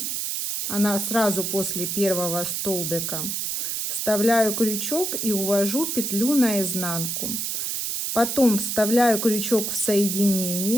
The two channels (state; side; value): noise; right; hiss, 2 dB below the sound